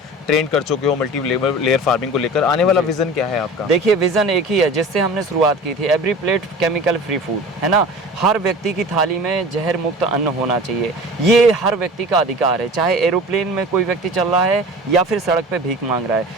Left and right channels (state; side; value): normal; both; correlation 0.38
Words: ट्रेन कर चुके हो मल्टी लेयर फार्मिंग को लेकर, आने वाला विजन क्या है आपका? देखिए, विजन एक ही है जिससे हमने शुरुआत की थी, every plate chemical free food, है ना। हर व्यक्ति की थाली में जहर मुक्त अन्न होना चाहिए। ये हर व्यक्ति का अधिकार है, चाहे एरोप्लेन में कोई व्यक्ति चल रहा है या फिर सड़क पे भीख मांग रहा है,